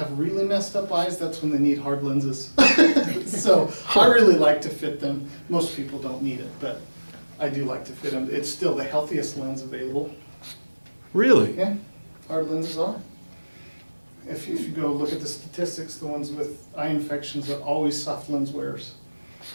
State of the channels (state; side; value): inverted; both; correlation -1.00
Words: really messed up eyes, that's when they need hard lenses. So I really like to fit them. Most people don't need it, but I do like to fit them. It's still the healthiest lens available. Really? Yeah, hard lenses are. If you go look at the statistics, the ones with eye infections are always soft lens wearers.